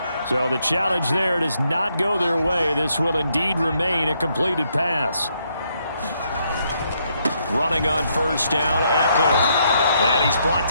So the challenge there does not go their way. This will indeed remain a completed pass. Running on first down, Eckler. And he's brought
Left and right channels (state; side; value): inverted; both; correlation -0.75